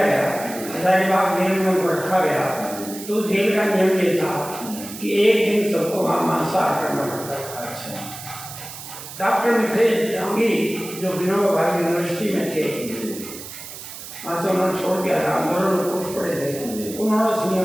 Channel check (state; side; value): noise; right; hiss, 12 dB below the sound